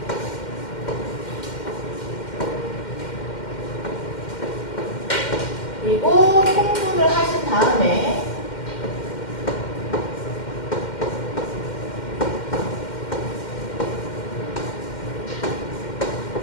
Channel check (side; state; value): right; late; 2.1 ms